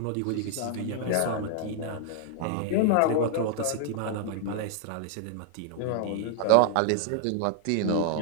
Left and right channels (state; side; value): different; both; correlation -0.01